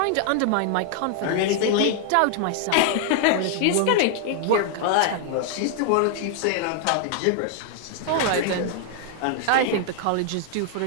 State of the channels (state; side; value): different; both; correlation 0.00